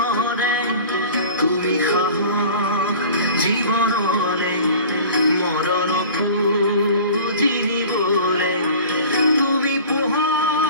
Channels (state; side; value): inverted; both; correlation -0.41